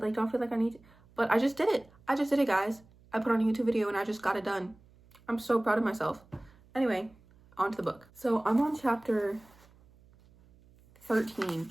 like don't feel like I need to. But I just did it. Guys. I put on a YouTube video and I just got it done. I'm so proud of myself. Anyway, on to the book. So I'm on chapter 13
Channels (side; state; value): right; noise; hum, 28 dB below the sound